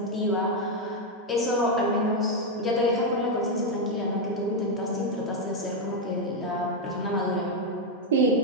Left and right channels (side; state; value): both; normal; correlation 0.03